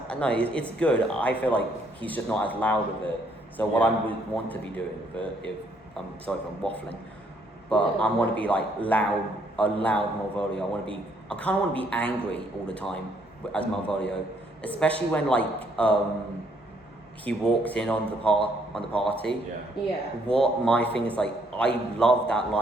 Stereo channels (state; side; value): normal; both; correlation 0.69